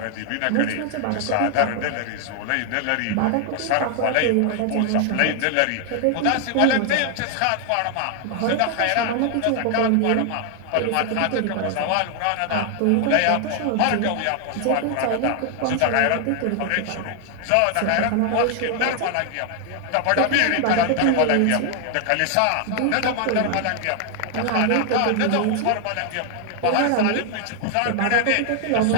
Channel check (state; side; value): different; both; correlation 0.00